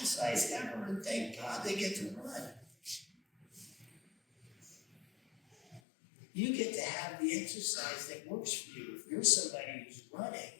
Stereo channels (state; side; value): drops out; right; at 5.8 s